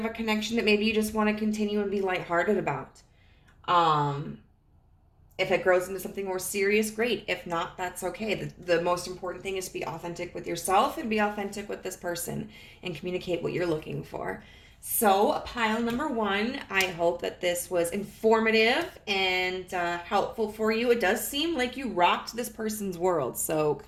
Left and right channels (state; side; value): identical; both; correlation 1.00